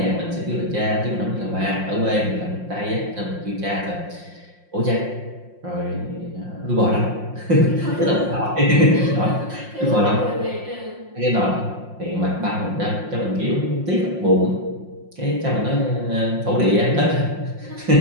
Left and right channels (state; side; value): late; left; 5.7 ms